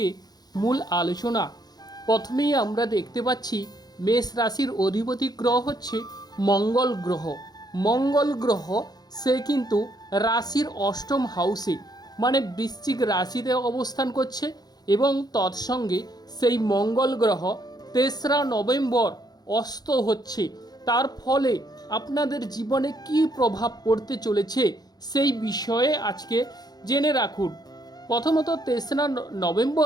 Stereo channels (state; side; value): late; right; 0.19 ms